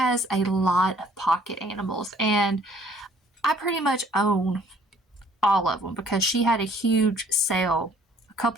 a lot of pocket animals, and I pretty much own all of them because she had a huge sale a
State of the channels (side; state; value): both; normal; correlation 0.58